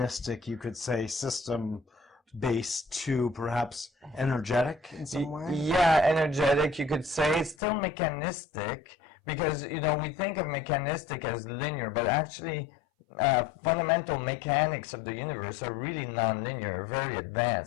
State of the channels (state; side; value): drops out; right; at 7.6 s